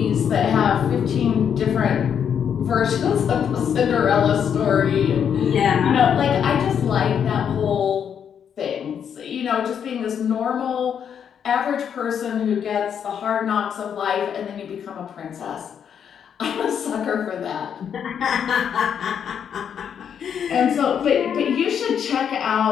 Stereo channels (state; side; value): quieter; right; 8.1 dB